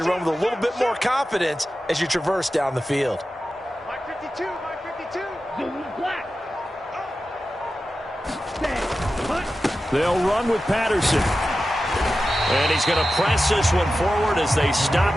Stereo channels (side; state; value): both; normal; correlation 0.93